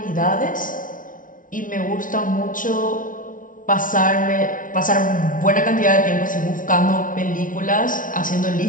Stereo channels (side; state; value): right; late; 0.38 ms